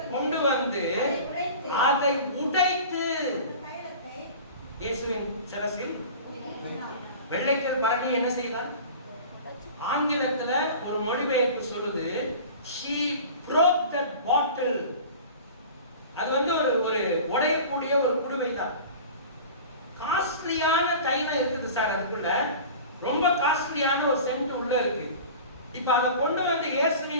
கொண்டு வந்து அதை உடைத்து இயேசுவின் சிரசில். வெள்ளைக்கல் பரணி என்ன செய்தார்? ஆங்கிலத்துல ஒரு மொழிபெயர்ப்பு சொல்லுது, she broke that bottle. அது வந்து ஒரு உடையக்கூடிய ஒரு குடுவை தான். காஸ்ட்லியான தைலம் இருக்குது சார், அதுக்குள்ள ரொம்ப காஸ்ட்லியான ஒரு சென்ட் உள்ள இருக்கு. இப்ப அதை கொண்டு வந்து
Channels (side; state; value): both; inverted; correlation -0.38